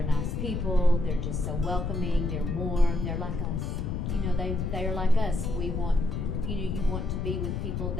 nice people, they're just so welcoming, they're warm, they're like us. They're like us. We want, you want to be with people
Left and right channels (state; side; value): noise; left; rumble, 1 dB below the sound